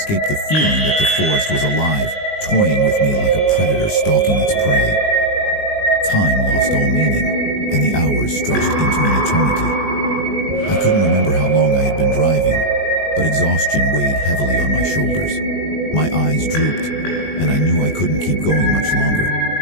the feeling that the forest was alive, toying with me like a predator stalking its prey. Time lost all meaning, and the hours stretched into an eternity. I couldn't remember how long I had been driving, but exhaustion weighed heavily on my shoulders. My eyes drooped, and I knew I couldn't keep going much longer.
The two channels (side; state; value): right; late; 20 ms